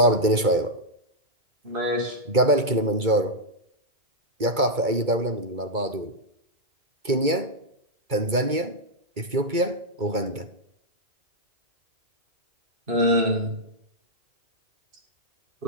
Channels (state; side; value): late; left; 2.2 ms